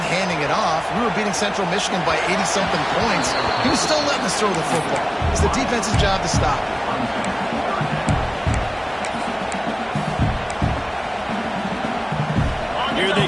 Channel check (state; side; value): identical; both; correlation 1.00